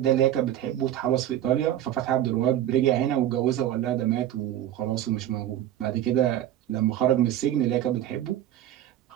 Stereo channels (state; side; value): quieter; left; 12.2 dB